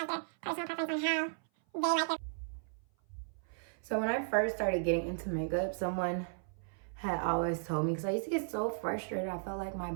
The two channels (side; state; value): left; silent; 54 dB below the other